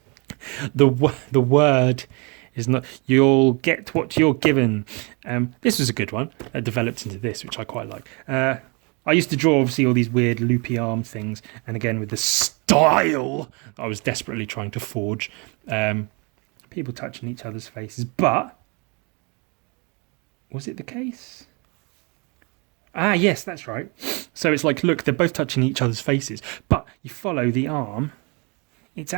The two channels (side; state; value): left; quieter; 31.2 dB